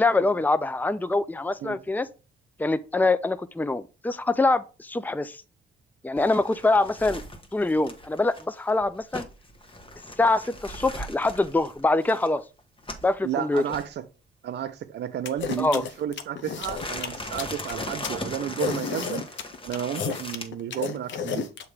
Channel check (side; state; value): both; normal; correlation 0.73